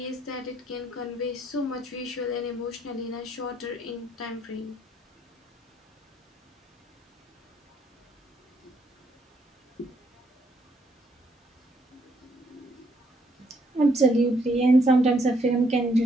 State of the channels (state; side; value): normal; both; correlation 0.71